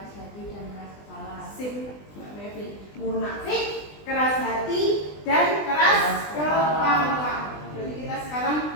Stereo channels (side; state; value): right; late; 20 ms